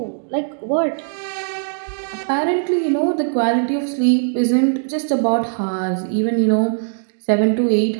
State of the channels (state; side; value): silent; left; digital silence